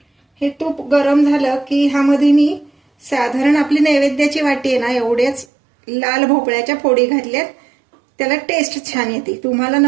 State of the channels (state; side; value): drops out; left; at 5.5 s